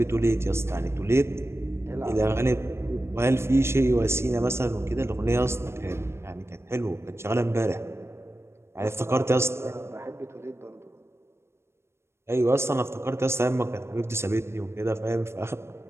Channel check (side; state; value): left; late; 0.12 ms